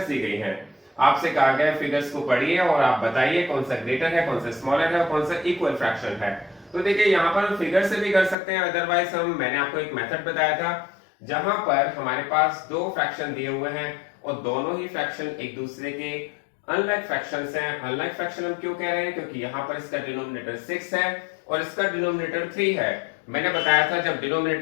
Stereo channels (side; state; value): right; drops out; at 8.3 s